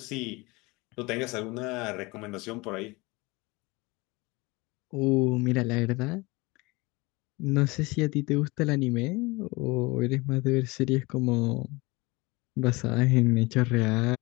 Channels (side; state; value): right; quieter; 24.3 dB